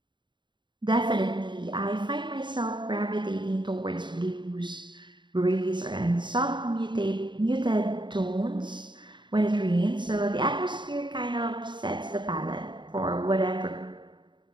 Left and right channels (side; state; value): left; late; 0.23 ms